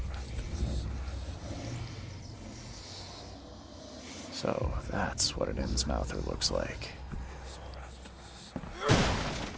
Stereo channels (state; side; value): identical; both; correlation 1.00